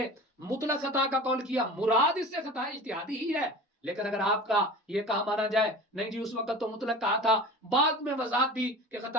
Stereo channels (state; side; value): normal; both; correlation 0.37